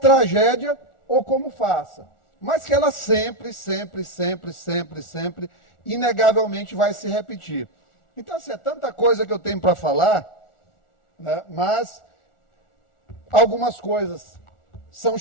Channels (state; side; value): late; right; 1.4 ms